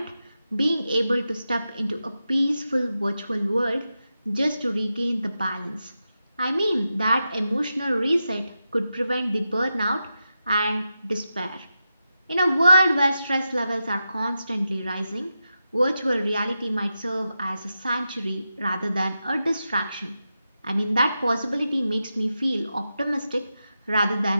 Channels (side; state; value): both; inverted; correlation -0.89